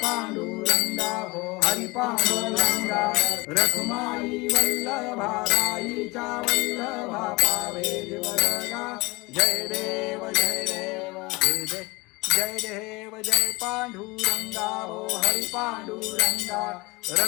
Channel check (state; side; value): quieter; right; 24.0 dB